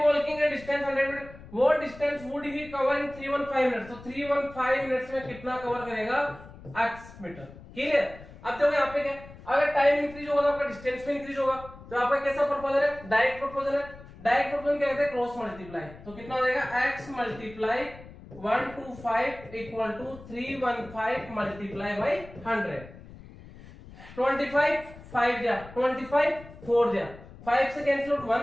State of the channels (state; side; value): noise; left; rumble, 18 dB below the sound